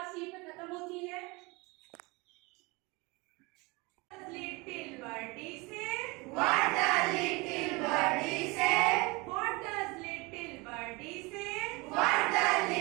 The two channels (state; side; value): quieter; left; 25.6 dB